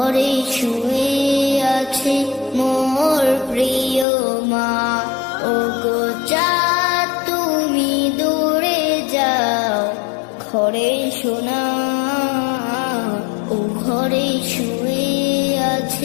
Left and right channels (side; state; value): right; drops out; at 4.0 s